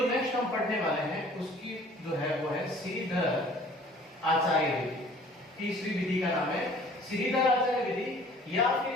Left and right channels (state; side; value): normal; both; correlation 0.51